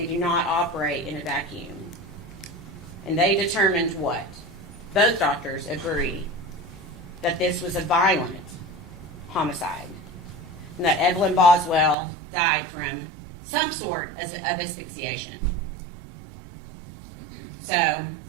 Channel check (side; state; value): left; drops out; at 12.0 s